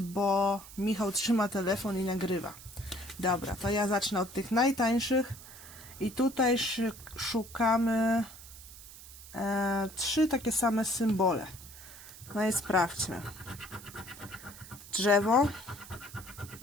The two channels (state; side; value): noise; right; hiss, 17 dB below the sound